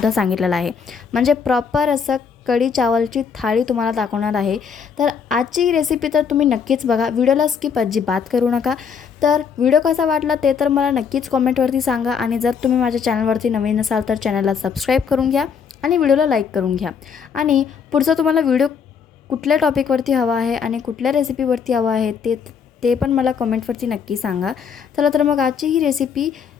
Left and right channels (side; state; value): right; quieter; 6.6 dB